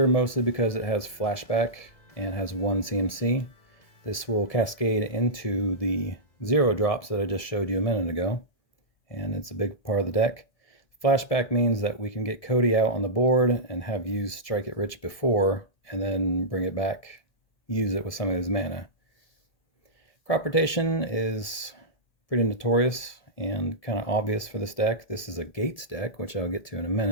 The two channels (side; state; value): right; late; 2.0 ms